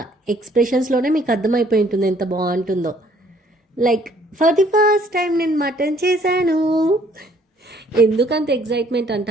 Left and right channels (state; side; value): normal; both; correlation 0.61